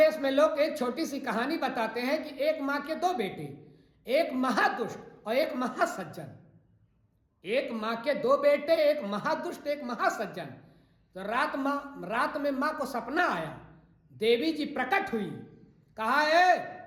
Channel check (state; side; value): identical; both; correlation 1.00